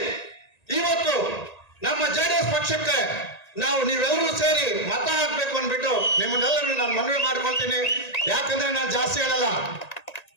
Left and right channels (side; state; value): right; late; 1.9 ms